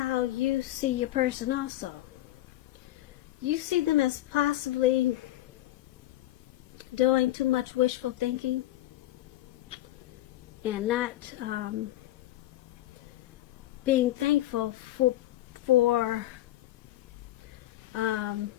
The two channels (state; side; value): quieter; right; 15.0 dB